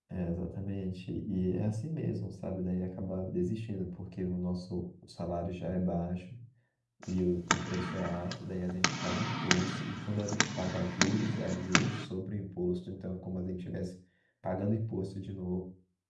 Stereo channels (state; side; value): identical; both; correlation 1.00